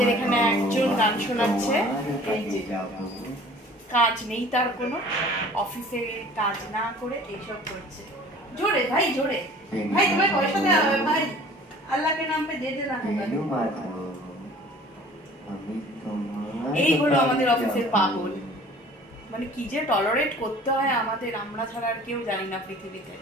এখানে একজন গান শোনাচ্ছে। এই যে কাজ নেই তার কোনো, অফিসে কাজ না করে এইসব করছে। জোরে ভাই, জোরে ভাই, তোমায় পয়সা দেওয়া হবে ভাই, আল্লাহকে নাম পে দে দেনা। এই হলো আমাদের অফিসের পাগল। মানে কি যে টলারেট করতে হয় আমাদের, আমরা ছাড়া আর কেউ জানি না পৃথিবীতে।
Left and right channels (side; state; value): both; normal; correlation 0.48